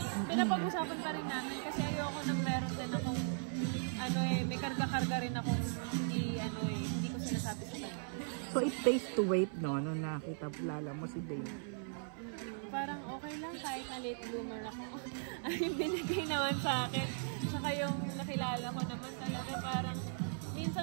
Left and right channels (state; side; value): silent; left; 52 dB below the other